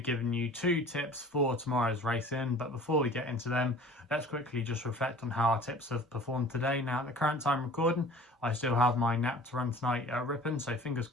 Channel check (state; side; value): normal; both; correlation 0.45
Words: you 2 tips for tomorrow's racing. But before we get into them, let's quickly just reflect on how our tips have performed today. Now at the current time recording, I still have my nap to run tonight at Ripon, so fingers